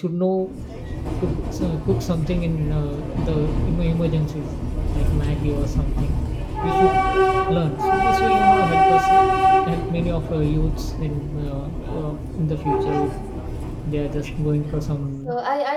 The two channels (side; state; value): both; identical; correlation 1.00